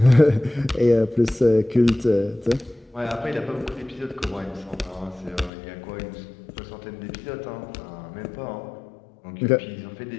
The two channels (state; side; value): drops out; right; at 5.5 s